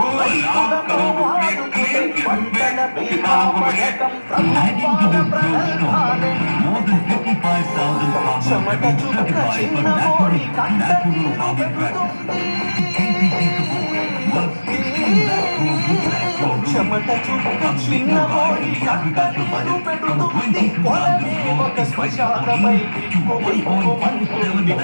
రైతులను ఆదుకునే పంటల బీమా పథకం ప్రభుత్వాల ప్రగల్భాలే. చెమట చుక్క చిన్నబోయి కంట నీరు పెడుతుంది, చెమట చుక్క చిన్నబోయి కంట నీరు పెడుతుంది. పొలమే ఒక శ్మశానమై బిక్కు బిక్కుమంటుంది.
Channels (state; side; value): inverted; both; correlation -1.00